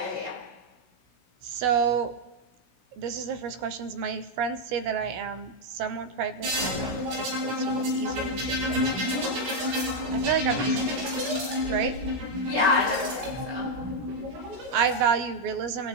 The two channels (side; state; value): left; late; 16 ms